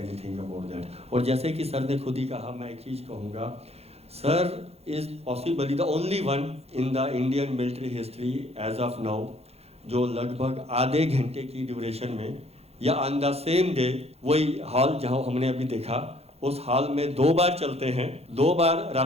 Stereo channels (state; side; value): late; left; 0.30 ms